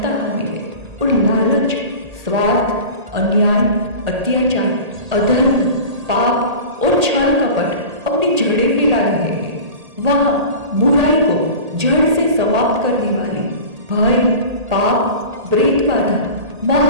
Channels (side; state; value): left; late; 1.8 ms